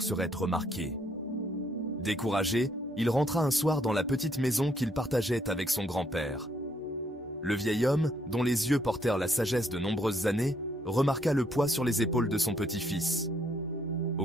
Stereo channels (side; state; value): both; normal; correlation 0.70